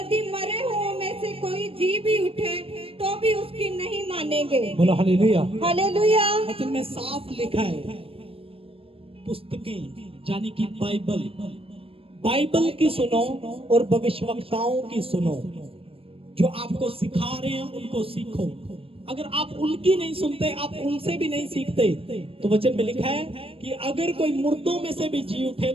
मरे हुओं में से कोई जी भी उठे तो भी उसकी नहीं मानेंगे। बोलो हालेलुया। हालेलुया। वचन में साफ लिखा है, पुस्तकें यानी कि बाइबल की सुनो और भविष्यवक्ताओं की सुनो। जो आपको सिखा रहे हैं उनको सीखो। अगर आप उनकी नहीं सुनते, आप उनसे भी नहीं सीखते, तो वचन में लिखा है कि अगर कोई मुर्दों में से भी जी उठे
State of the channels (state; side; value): late; left; 0.27 ms